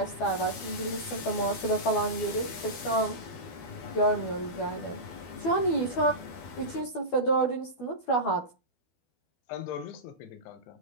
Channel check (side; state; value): right; late; 12 ms